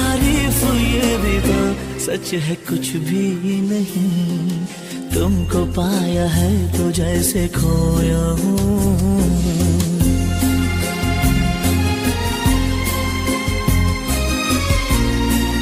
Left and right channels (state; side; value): identical; both; correlation 1.00